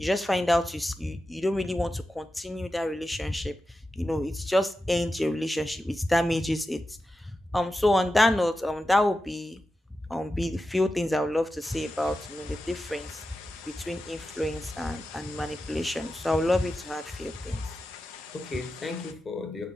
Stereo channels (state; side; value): normal; both; correlation 0.91